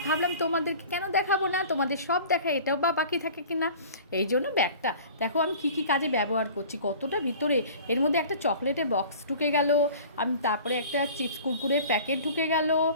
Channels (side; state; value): both; inverted; correlation -0.43